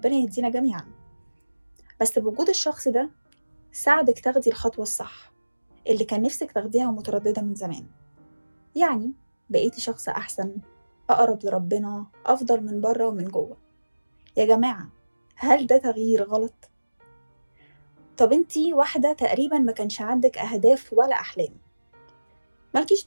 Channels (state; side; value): inverted; both; correlation -1.00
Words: يهدينا جميعا. بس بوجود الشخص ده ساعدك تاخدي الخطوة الصح اللي كان نفسك تاخديها ومترددة من زمان. يعني بقيتي شخص أحسن، أقرب لربنا، أفضل من بره ومن جوه. يا جماعة، هل ده تغيير غلط؟ طب انتي واحدة تقريبا ما كانش عندك أهداف ولا أحلام، مالكيش